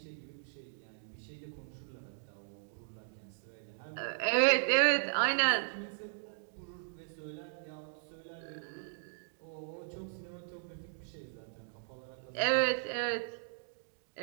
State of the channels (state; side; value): silent; left; digital silence